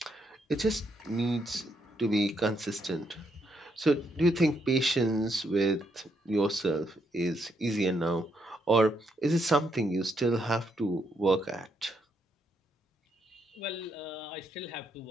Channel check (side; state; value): both; normal; correlation 0.76